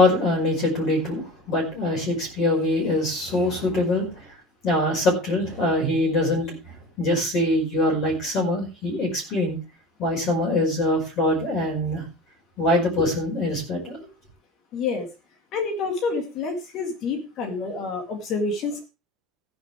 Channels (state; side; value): normal; both; correlation 0.35